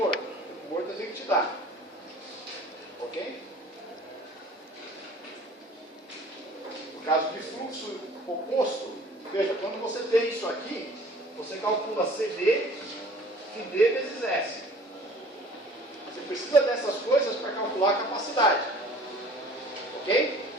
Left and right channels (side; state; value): both; normal; correlation 0.49